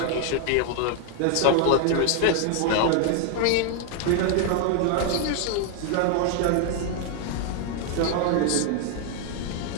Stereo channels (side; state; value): both; different; correlation 0.00